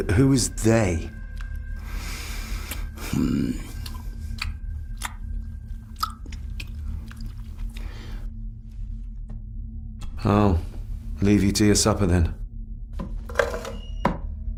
Who is they? I'll leave you to your supper then.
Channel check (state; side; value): identical; both; correlation 1.00